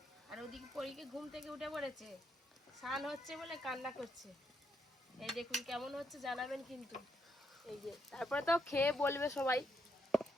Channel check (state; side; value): normal; both; correlation 0.77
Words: আর ওদিকে পরীকে ঘুম থেকে উঠে পড়েছে, স্নান হচ্ছে বলে কান্না করছে। এই দেখুন কেমন হচ্ছে জানাবেন কিন্তু। এই যে তারপরে তো খেয়ে বলবে সবাই